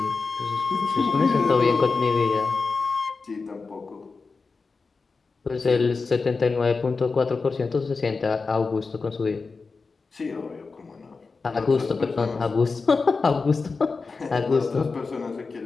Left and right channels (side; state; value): right; quieter; 4.4 dB